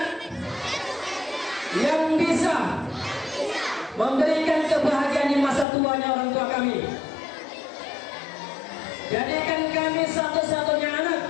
yang bisa memberikan kebahagiaan di masa tuanya orang tua kami. Jadikan kami satu-satunya anak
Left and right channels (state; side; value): drops out; right; at 5.7 s